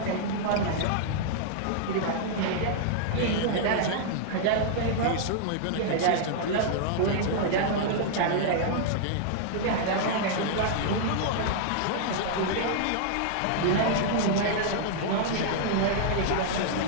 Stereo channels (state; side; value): different; both; correlation -0.01